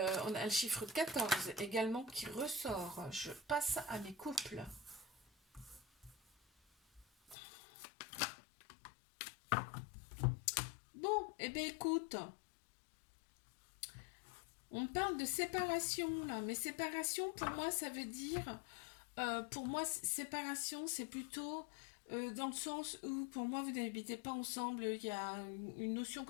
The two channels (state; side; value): drops out; right; at 7.4 s